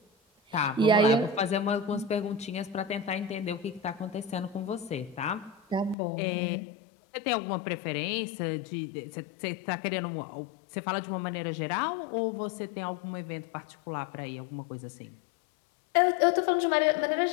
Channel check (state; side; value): drops out; right; at 6.0 s